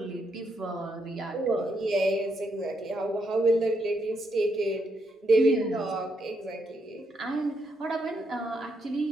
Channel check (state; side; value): normal; both; correlation 0.78